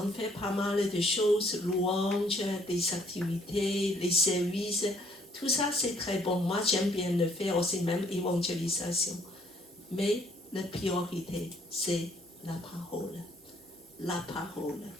fait pas mal de choses, louanges, des activités, les services. Tout ça, c'est très bon. Moi, j'aime bien le faire aussi, même évangélisation. Mais la priorité, c'est la parole. La parole.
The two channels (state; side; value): normal; both; correlation 0.63